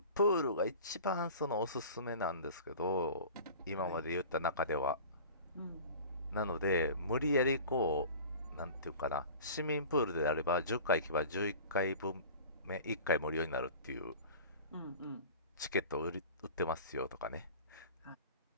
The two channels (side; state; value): both; inverted; correlation -0.39